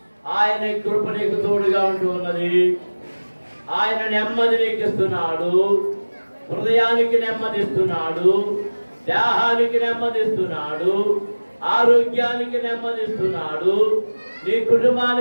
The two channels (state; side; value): inverted; both; correlation -1.00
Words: ఆయన కృప నీకు తోడుగా ఉంటూ ఉన్నది. ఆయన నెమ్మది నీకు ఇస్తున్నాడు, హృదయానికి నెమ్మదిస్తున్నాడు, దేహానికి నెమ్మదిస్తున్నాడు, ఆరోగ్యానికి నెమ్మదిస్తున్నాడు, నీ